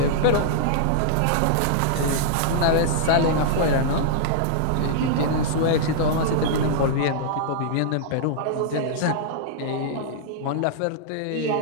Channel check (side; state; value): both; different; correlation -0.01